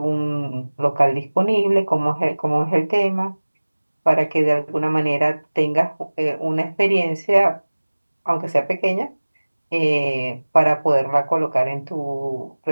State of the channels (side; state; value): both; inverted; correlation -1.00